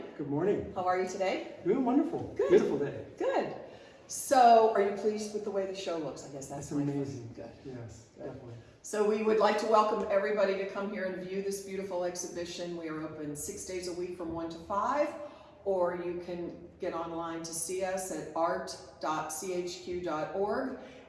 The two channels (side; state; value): both; identical; correlation 1.00